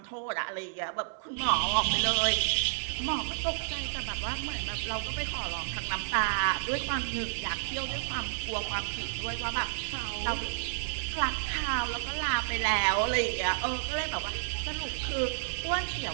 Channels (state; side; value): silent; left; 57 dB below the other